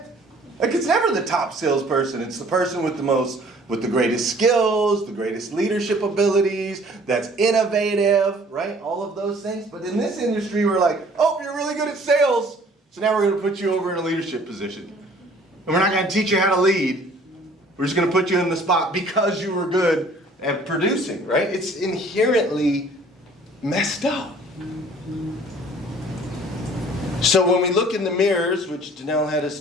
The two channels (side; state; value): both; normal; correlation 0.54